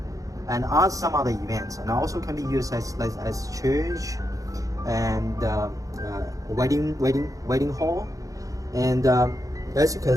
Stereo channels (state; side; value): late; left; 0.16 ms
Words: and some other events. And also can be used as church and wedding hall. And as you can